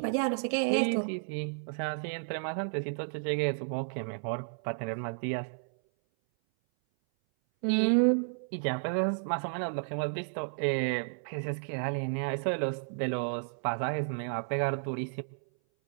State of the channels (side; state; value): left; silent; 56 dB below the other